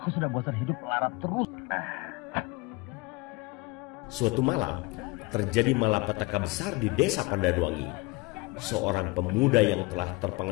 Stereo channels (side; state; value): right; quieter; 24.4 dB